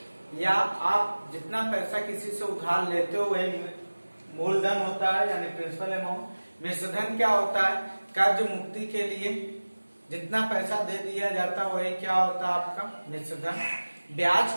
या आप जितना पैसा किसी से उधार लेते हो वही मूलधन होता है यानी प्रिंसिपल अमाउंट। मिश्रधन क्या होता है? कर्ज मुक्ति के लिए जितना पैसा दे दिया जाता है वही क्या होता है आपका मिश्रधन।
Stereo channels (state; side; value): inverted; both; correlation -1.00